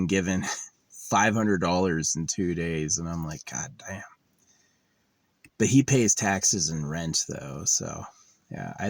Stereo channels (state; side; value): identical; both; correlation 1.00